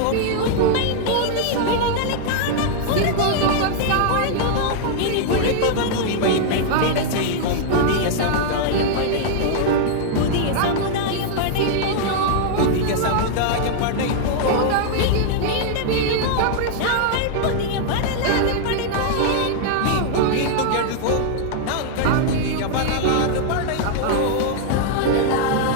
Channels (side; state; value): both; different; correlation -0.01